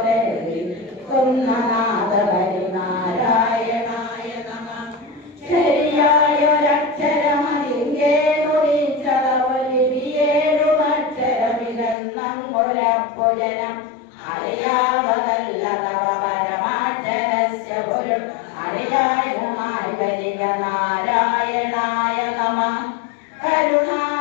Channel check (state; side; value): drops out; right; at 12.0 s